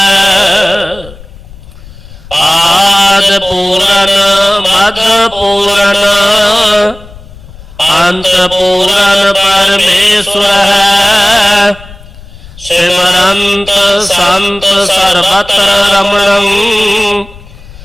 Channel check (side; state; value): left; noise; rumble, 20 dB below the sound